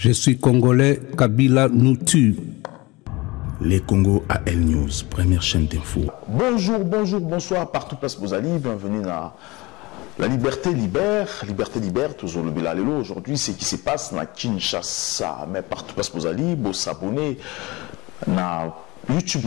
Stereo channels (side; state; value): right; quieter; 22.7 dB